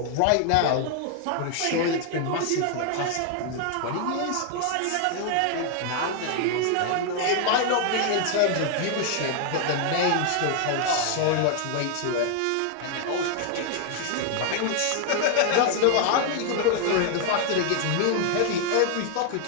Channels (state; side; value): different; both; correlation 0.00